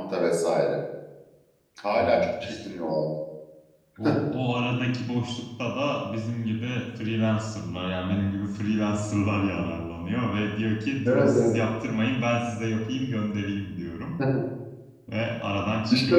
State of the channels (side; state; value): both; identical; correlation 1.00